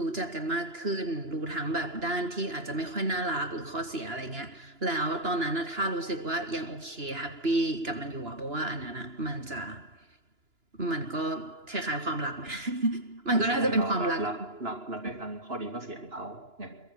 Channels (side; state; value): left; late; 2.9 ms